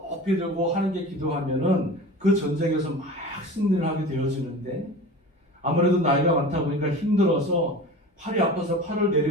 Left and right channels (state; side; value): normal; both; correlation 0.36